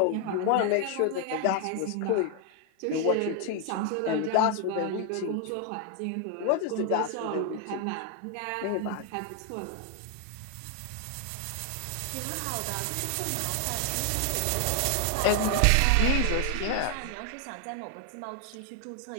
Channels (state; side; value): different; both; correlation 0.00